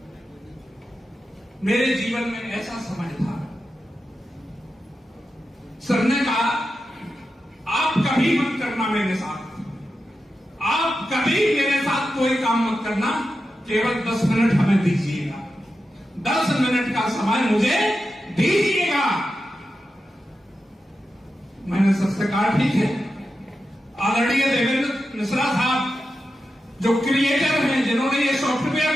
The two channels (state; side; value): normal; both; correlation 0.90